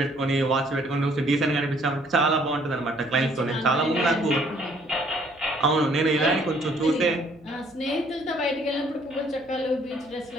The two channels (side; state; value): right; noise; hum, 29 dB below the sound